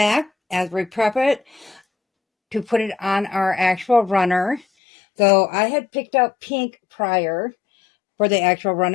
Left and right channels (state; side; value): drops out; right; at 4.7 s